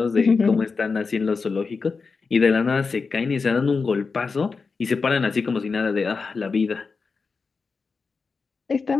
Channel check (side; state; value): right; quieter; 4.7 dB